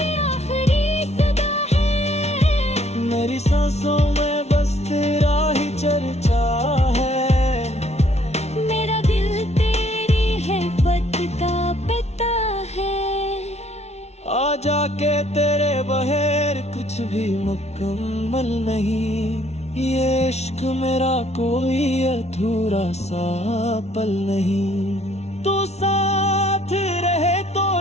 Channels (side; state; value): right; late; 0.31 ms